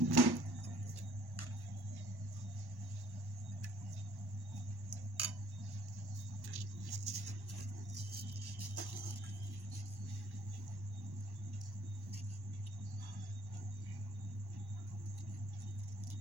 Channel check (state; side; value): late; left; 1.1 ms